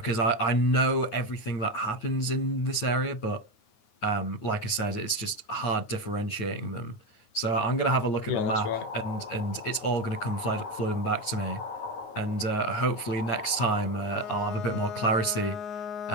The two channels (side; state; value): right; late; 9.4 ms